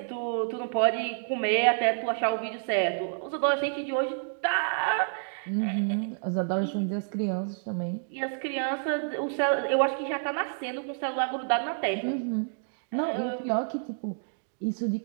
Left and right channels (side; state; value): left; silent; digital silence